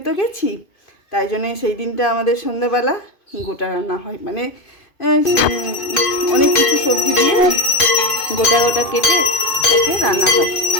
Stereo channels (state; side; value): late; right; 2.5 ms